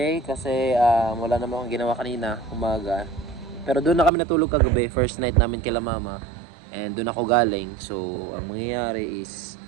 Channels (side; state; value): left; drops out; at 4.1 s